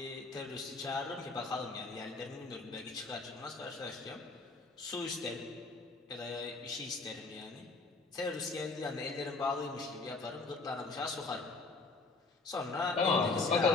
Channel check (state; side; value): quieter; right; 3.8 dB